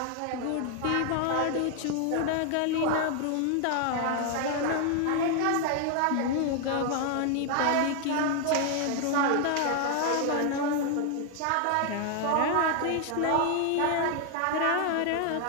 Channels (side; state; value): both; different; correlation 0.00